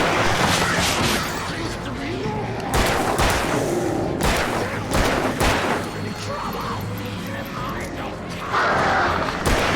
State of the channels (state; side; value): identical; both; correlation 1.00